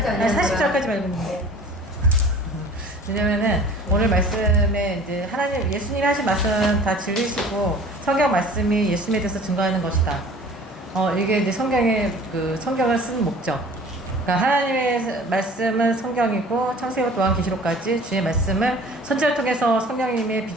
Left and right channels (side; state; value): both; normal; correlation 0.47